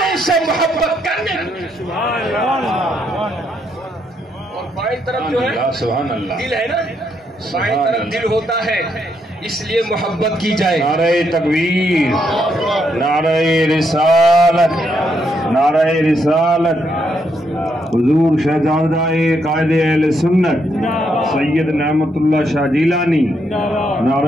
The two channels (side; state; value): both; normal; correlation 0.77